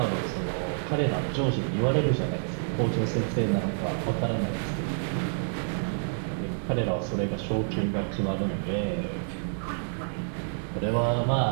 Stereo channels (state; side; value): silent; left; digital silence